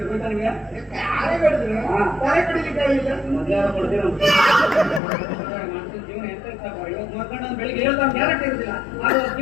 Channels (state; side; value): drops out; right; at 5.0 s